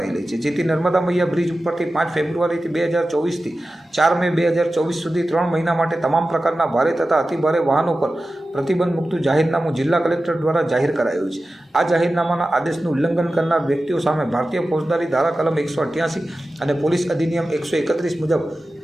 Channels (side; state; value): both; normal; correlation 0.94